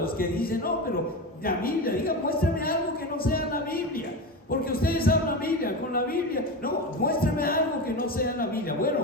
los que dicen: no, pero la Biblia, muéstrame algo que no sea la Biblia, porque ustedes hablan Biblia, con la Biblia. No, muéstrame algo que no sea la Biblia.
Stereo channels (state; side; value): normal; both; correlation 0.22